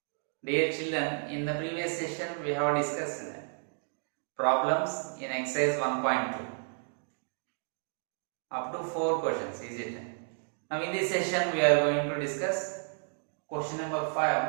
Dear children, in the previous session we have discussed problems in exercise 1.2 up to 4 questions, is it? Now in this session we are going to discuss question number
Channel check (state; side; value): silent; left; 56 dB below the other